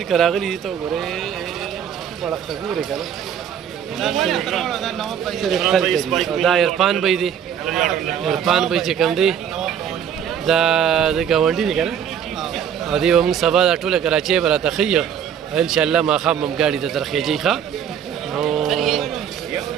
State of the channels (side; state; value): left; quieter; 8.7 dB